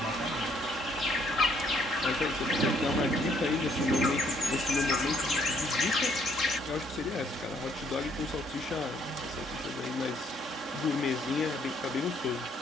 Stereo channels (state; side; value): normal; both; correlation 0.67